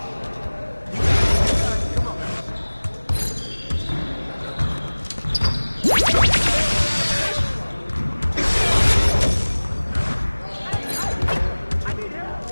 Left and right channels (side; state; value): both; inverted; correlation -1.00